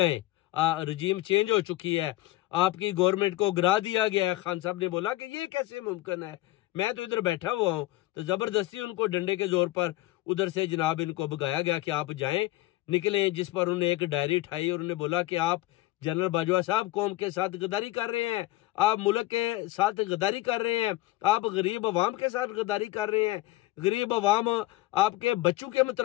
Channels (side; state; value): right; quieter; 18.1 dB